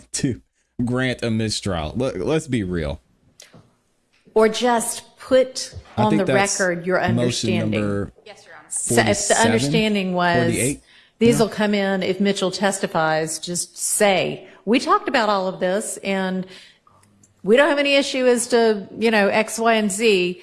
to grant a mistrial. Let's be real. Or just put I on think the that's record your motion understanding. number Yes, Your Honor. So if the 47, understanding was 48? these will come in if Mitchell testifies, just say, we talked about all of this and we don't have any issue as to, X, Y, and Z.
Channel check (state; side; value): identical; both; correlation 1.00